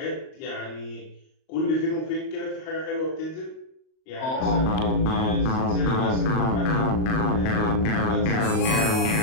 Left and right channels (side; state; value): right; late; 38 ms